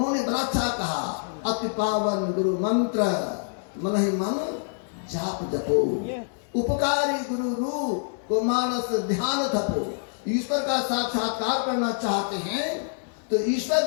बड़ा अच्छा कहा, अति पावन गुरु मंत्र मन ही मन जाप जपो, उपकारी गुरु रूप को मानस ध्यान थपो। ईश्वर का साक्षात्कार करना चाहते हैं तो ईश्वर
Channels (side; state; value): right; silent; 61 dB below the other